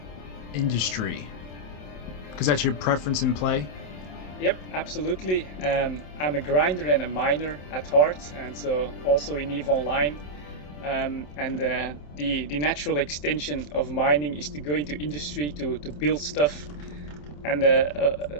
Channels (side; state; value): right; late; 27 ms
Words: industry, because that's your preference in play. Yep, absolutely. I'm a grinder and a miner at heart, and so also in EVE Online. The natural extension of mining is to go into industry to build stuff. And